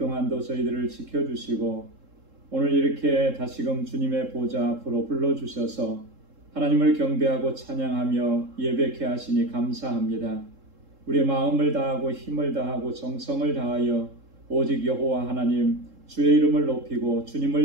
저희들을 지켜주시고 오늘 이렇게 다시금 주님의 보좌 앞으로 불러주셔서 하나님을 경배하고 찬양하며 예배케 하시니 감사합니다. 우리의 마음을 다하고 힘을 다하고 정성을 다하여 오직 여호와 하나님 주의 이름을 높이고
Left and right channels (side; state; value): left; late; 3.7 ms